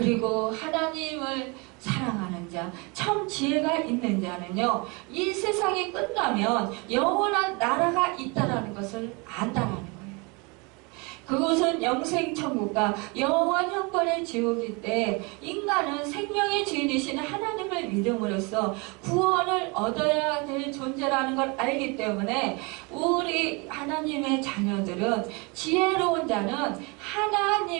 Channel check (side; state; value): left; quieter; 29.1 dB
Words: 하나님을 사랑하는 자, 참 지혜가 있는 자는요, 이 세상이 끝나면 영원한 나라가 있다라는 것을 안다라는 거예요. 그곳은 영생천국과 영원 형벌의 지옥일 때 인간은 생명의 주인이신 하나님을 믿음으로써 구원을 얻어야 될 존재라는 걸 알기 때문에 우리 하나님의 자녀들은, 지혜로운 자는